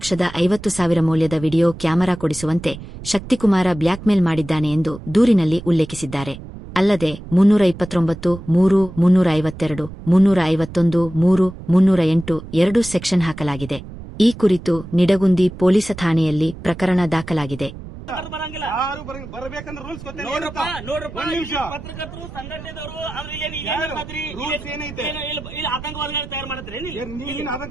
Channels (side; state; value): right; noise; rumble, 13 dB below the sound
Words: ಮೌಲ್ಯದ ವಿಡಿಯೋ ಕ್ಯಾಮೆರಾ ಕೊಡಿಸುವಂತೆ ಶಕ್ತಿಕುಮಾರ ಬ್ಲ್ಯಾಕ್ಮೇಲ್ ಮಾಡಿದ್ದಾನೆ ಎಂದು ದೂರಿನಲ್ಲಿ ಉಲ್ಲೇಖಿಸಿದ್ದಾರೆ. ಅಲ್ಲದೆ 329, 3, 352, 351, 3, 308 2 ಸೆಕ್ಷನ್ ಹಾಕಲಾಗಿದೆ. ಈ ಕುರಿತು ನಿಡಗುಂದಿ ಪೊಲೀಸ್ ಠಾಣೆಯಲ್ಲಿ ಪ್ರಕರಣ ದಾಖಲಾಗಿದೆ. ಪತ್ರಕರ್ತರು ಸಂಘಟನೆದವರು ಆತಂಕವಾದಿಗಳು ತಯಾರು ಮಾಡ್ತಾರೆ.